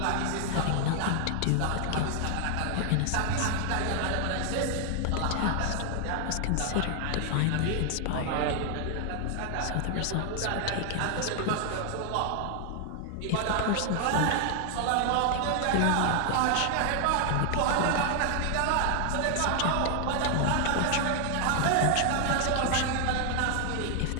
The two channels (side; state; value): both; different; correlation 0.00